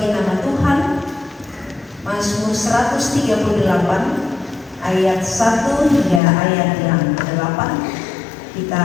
nama Tuhan. Mazmur 138 ayat 1 hingga ayat yang ke-8. Kita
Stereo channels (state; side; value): drops out; right; at 6.2 s